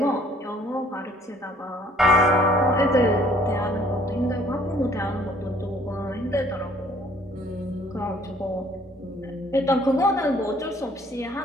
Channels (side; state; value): both; normal; correlation 0.60